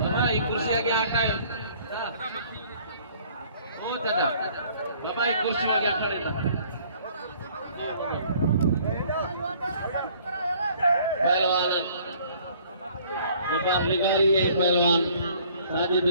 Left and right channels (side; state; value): both; inverted; correlation -0.57